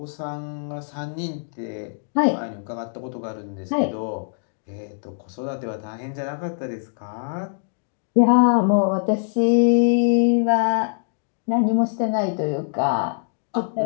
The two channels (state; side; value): silent; right; digital silence